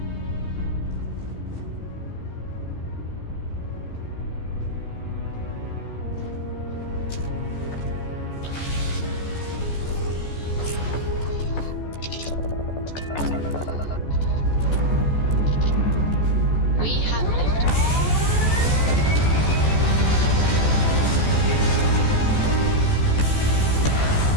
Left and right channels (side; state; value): right; late; 14 ms